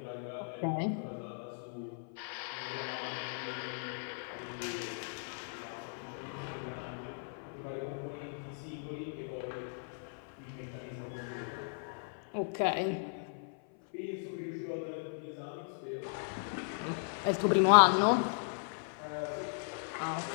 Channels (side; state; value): right; silent; 53 dB below the other